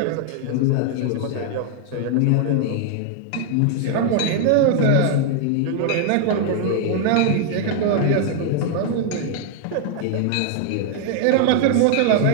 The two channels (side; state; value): both; different; correlation 0.00